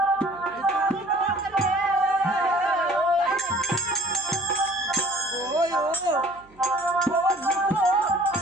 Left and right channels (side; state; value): right; noise; hum, 29 dB below the sound